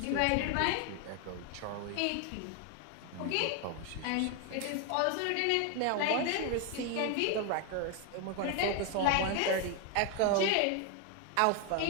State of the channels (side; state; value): both; different; correlation 0.01